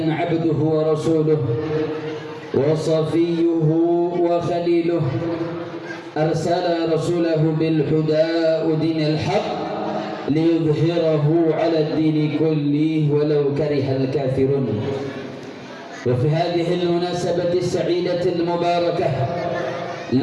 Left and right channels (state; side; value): identical; both; correlation 1.00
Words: عبده ورسوله وصفيه وخليله أرسل رسوله بالهدى ودين الحق ليظهره على الدين كله ولو كره الكافرون. وفي هذه المناسبة السعيدة المباركة